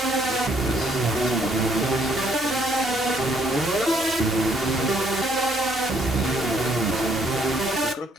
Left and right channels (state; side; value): normal; both; correlation 0.67